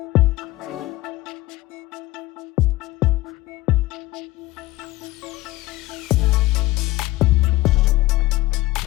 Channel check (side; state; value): right; quieter; 17.9 dB